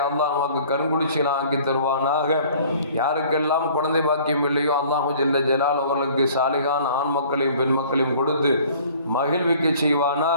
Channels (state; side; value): inverted; both; correlation -0.52